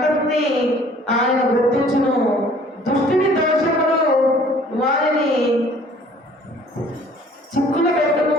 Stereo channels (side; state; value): both; normal; correlation 0.54